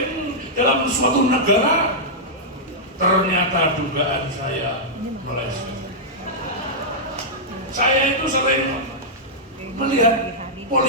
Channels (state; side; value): normal; both; correlation -0.09